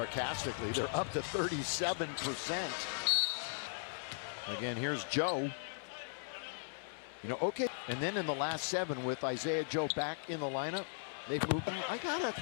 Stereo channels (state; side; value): silent; right; 52 dB below the other